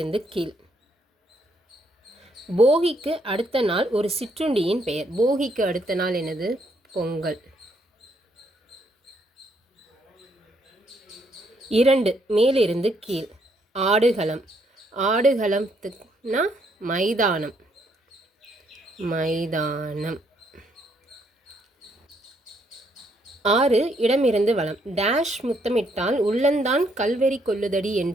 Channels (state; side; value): normal; both; correlation 0.72